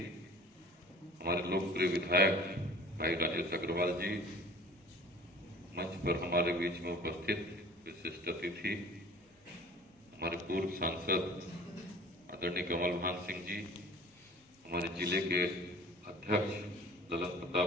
हमारे लोकप्रिय विधायक भाई राजेश अग्रवाल जी, मंच पर हमारे बीच में उपस्थित विशिष्ट अतिथि हमारे पूर्व सांसद आदरणीय कमल भान सिंह जी, हमारे जिले के अध्यक्ष ललन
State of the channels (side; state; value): both; normal; correlation 0.47